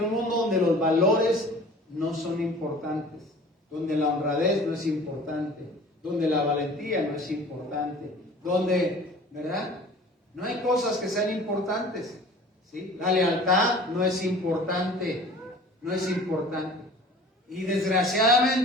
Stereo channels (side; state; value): both; normal; correlation 0.45